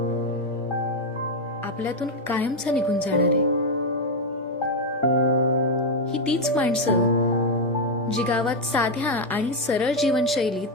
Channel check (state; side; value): normal; both; correlation 0.04